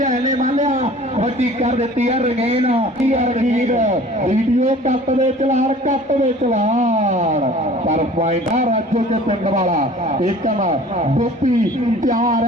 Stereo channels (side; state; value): both; normal; correlation 0.47